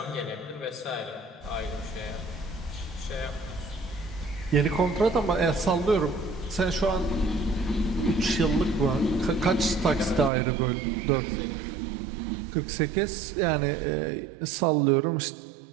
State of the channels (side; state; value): left; drops out; at 10.3 s